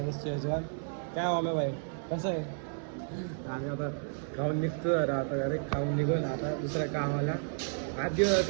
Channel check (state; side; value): silent; left; 56 dB below the other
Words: स्टेजवर. काय आलं भाई कसं आहे. आम्ही आता खाऊन निघतो, आता डायरेक्ट खाऊन निघून आता दुसऱ्या कामाला. आज दिवस